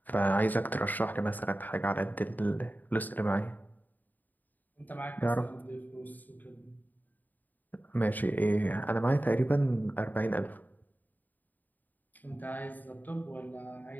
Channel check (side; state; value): right; late; 0.085 ms